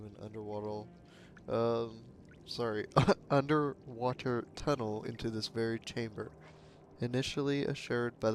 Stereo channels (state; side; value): identical; both; correlation 1.00